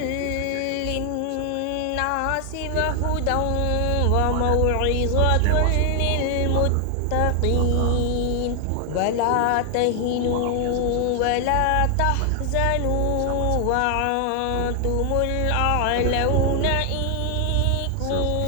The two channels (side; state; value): both; different; correlation 0.00